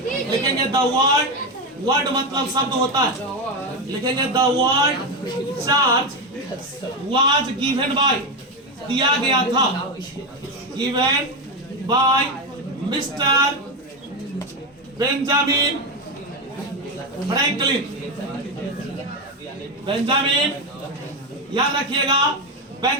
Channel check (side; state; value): both; normal; correlation 0.12